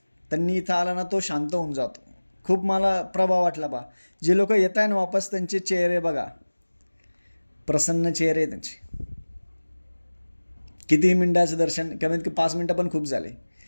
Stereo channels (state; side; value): inverted; both; correlation -1.00